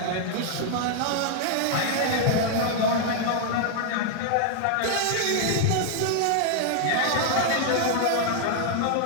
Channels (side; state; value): both; different; correlation -0.01